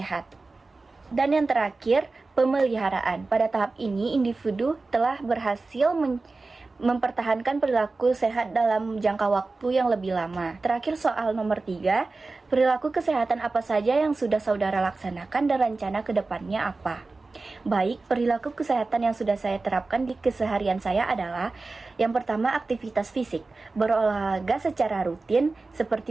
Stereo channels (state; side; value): quieter; left; 3.6 dB